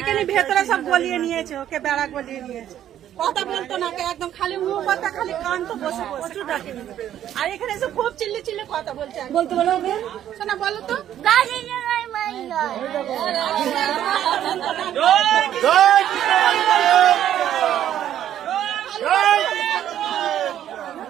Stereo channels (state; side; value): quieter; left; 11.1 dB